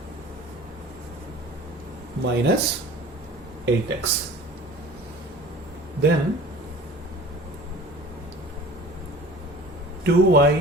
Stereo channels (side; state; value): both; normal; correlation 0.43